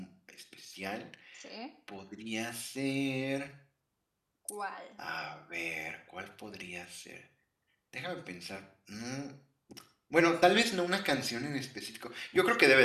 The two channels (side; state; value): both; identical; correlation 1.00